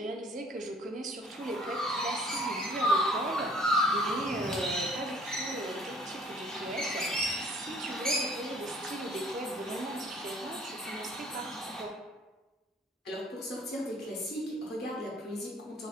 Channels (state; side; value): normal; both; correlation 0.56